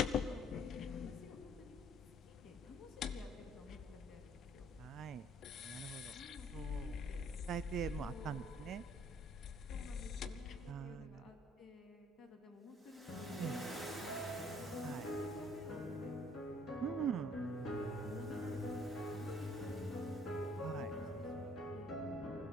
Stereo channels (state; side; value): normal; both; correlation 0.60